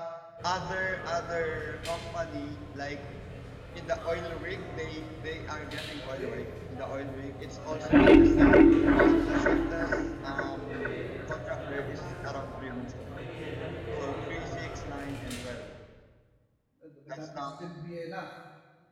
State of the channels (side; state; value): both; identical; correlation 1.00